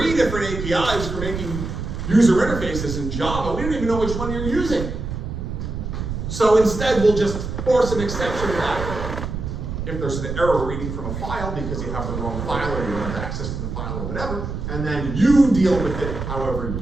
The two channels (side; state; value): right; noise; rumble, 5 dB below the sound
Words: different APIs for making user interfaces in Java. We don't even know which one you're using. So instead, we'll just force an exception that if there's an error reading from a file because you have the wrong file or you don't have access to the file or whatever, and then you deal with it however